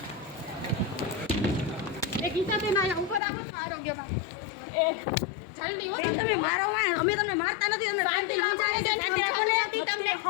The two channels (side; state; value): right; drops out; at 3.2 s